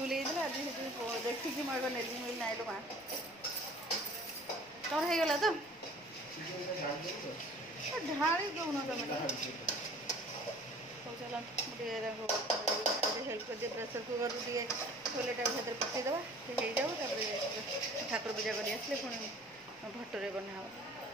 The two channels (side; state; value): right; noise; rumble, 29 dB below the sound